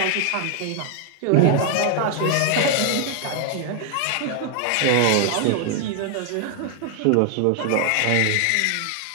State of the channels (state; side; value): different; both; correlation 0.00